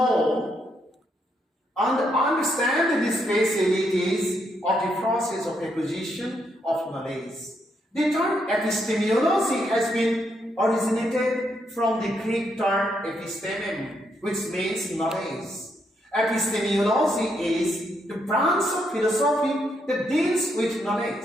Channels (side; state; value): both; normal; correlation 0.77